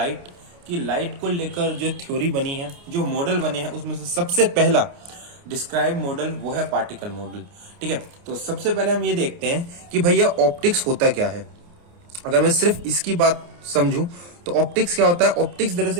कि लाइट को लेकर जो थ्योरी बनी है, जो मॉडल बने हैं, उसमें से सबसे पहला डिस्क्राइब मॉडल वो है पार्टिकल मॉडल। ठीक है, तो सबसे पहले हम ये देखते हैं कि भैया ऑप्टिक्स होता क्या है। अगर मैं सिर्फ इसकी बात समझूं तो ऑप्टिक्स क्या होता है। ऑप्टिक्स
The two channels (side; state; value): left; late; 29 ms